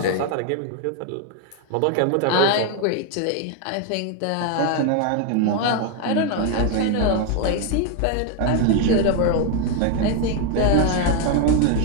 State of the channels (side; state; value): both; different; correlation 0.01